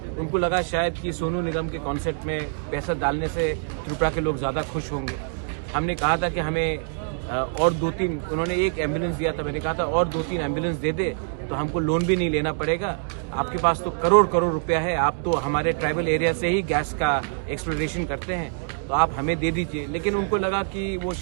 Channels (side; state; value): left; silent; digital silence